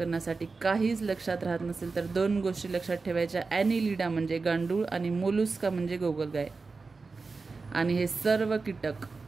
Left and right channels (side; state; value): left; quieter; 4.2 dB